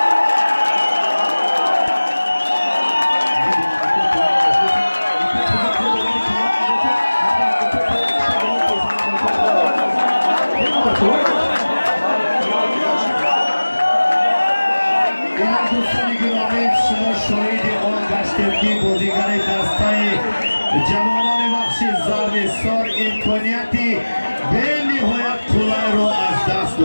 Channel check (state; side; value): inverted; both; correlation -1.00